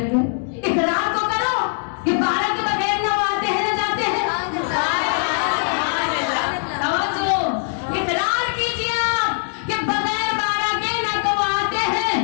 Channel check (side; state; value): right; silent; 61 dB below the other